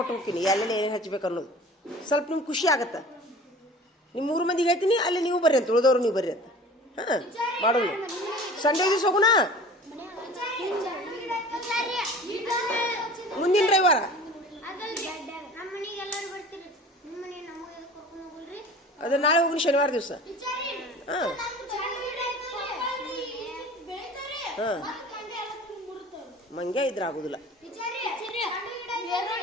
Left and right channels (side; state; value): both; normal; correlation 0.42